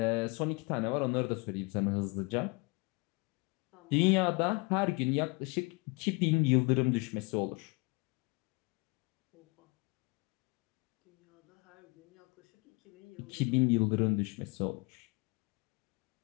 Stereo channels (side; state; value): right; quieter; 28.9 dB